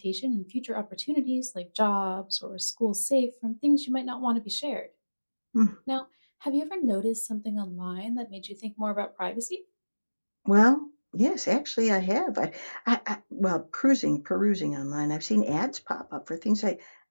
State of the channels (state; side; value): inverted; both; correlation -1.00